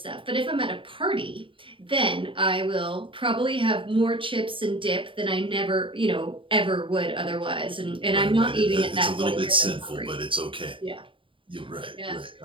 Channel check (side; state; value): left; late; 0.25 ms